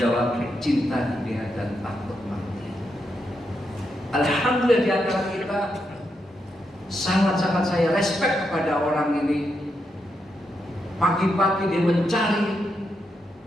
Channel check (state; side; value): normal; both; correlation 0.83